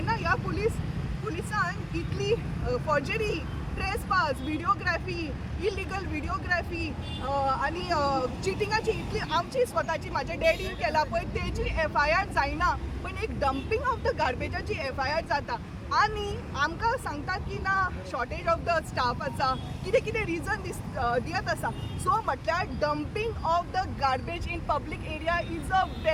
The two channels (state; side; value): identical; both; correlation 1.00